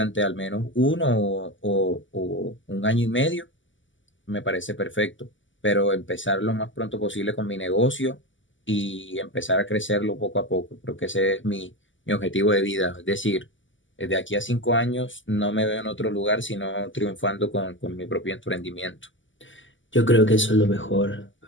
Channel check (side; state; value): right; late; 0.55 ms